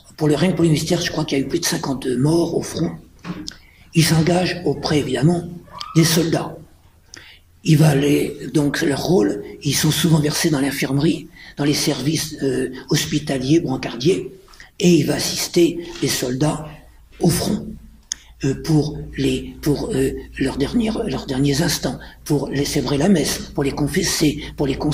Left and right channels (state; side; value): identical; both; correlation 1.00